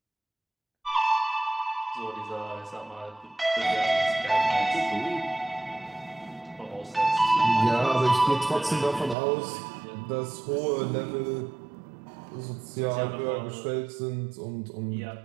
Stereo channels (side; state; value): left; drops out; at 9.2 s